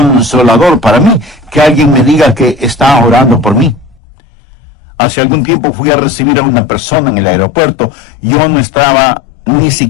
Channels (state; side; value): drops out; right; at 4.0 s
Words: para mí que alguien me diga que está orando por mí. Hace algún tiempo fui a recibir a una persona en el aeropuerto. Yo no estaba ni